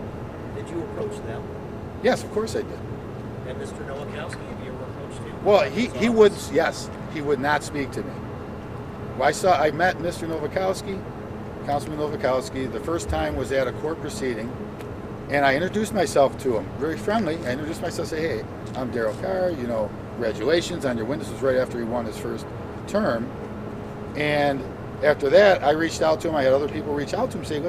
Did you approach them? Yes, of course I did. And Mr. Nowakowski, have you ever approached him? Well, he would, yes, he would not speak to me. Well, I met Mr. Nowakowski, Councilman Nowakowski. The first time was at a court proceeding, and I introduced myself to him, very friendly. I introduced myself, say, hey, I'm Darryl Carr, you know, congratulations on your win. This was right after he won his first term. And after that, I reached out to him. I had other people reach out to him, say,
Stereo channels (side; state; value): both; identical; correlation 1.00